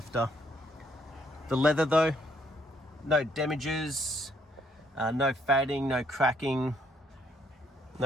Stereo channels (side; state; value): both; normal; correlation 0.69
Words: The leather though, no damages, no fading, no cracking,